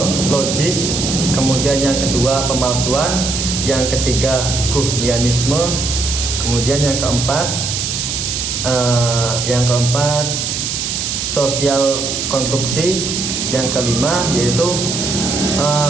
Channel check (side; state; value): right; noise; hiss, 2 dB below the sound